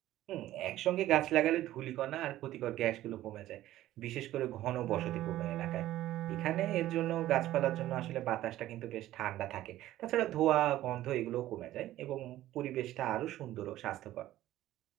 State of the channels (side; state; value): left; quieter; 14.5 dB